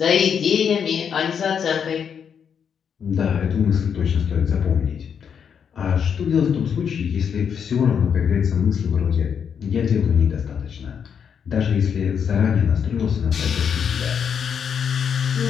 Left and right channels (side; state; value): right; quieter; 7.4 dB